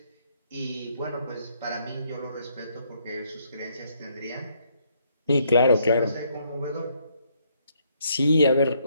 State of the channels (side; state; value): both; inverted; correlation -0.71